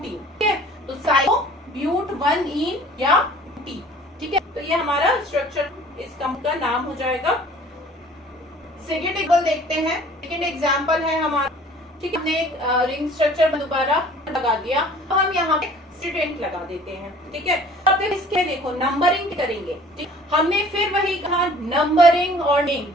ठीक है, तो साइक्लो ब्यूट 1 इन या टी। ठीक है, तो ये हमारा स्ट्रक्चर, इस कंप का नाम हो जाएगा। सेकेंड एग्जाम्पल देखते हैं। सेकेंड एग्जाम्पल है हमारा, ठीक है, हमने एक रिंग स्ट्रक्चर दोबारा लगा दिया, अब हम यहाँ पे स्टूडेंट लगा देते हैं। ठीक है, अब इसके देखो नंबरिंग करेंगे। ठीक, हमने फिर वही कहा, नंबरिंग और नेम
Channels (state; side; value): normal; both; correlation 0.50